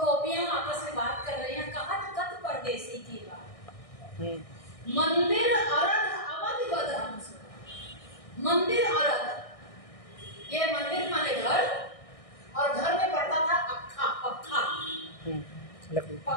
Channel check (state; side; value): late; right; 1.6 ms